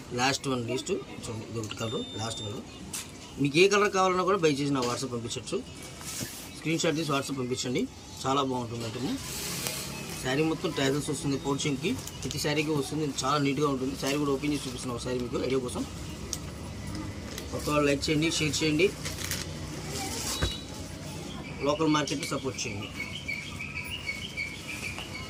లాస్ట్ చూడండి, ఇది ఒకటి కలర్, లాస్ట్ కలర్. మీకు ఏ కలర్ కావాలన్నా కూడా బై చేసి నా వాట్సాప్ పంపించవచ్చు. స్క్రీన్ షాట్ తీసి వాట్సాప్ పంపించండి. చాలా బాగుంటుంది అంటే. శారీ మొత్తం ట్యాజల్స్ వస్తుంది, పౌచింగ్కి ప్రతి శారీకి వస్తుంది. చాలా నీట్గా ఉంటుంది. శారీ కూడా ఓపెన్ చేసి చూపిస్తున్నాం శారీ మీకు ఐడియా కోసం. కొత్త వాళ్ళు లైక్ చేయండి, షేర్ చేయండి, లోకల్ మార్కెట్ని సపోర్ట్ చేయండి.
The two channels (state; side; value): identical; both; correlation 1.00